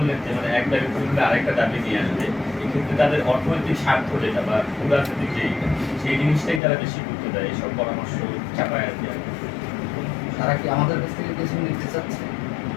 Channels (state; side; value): drops out; right; at 6.6 s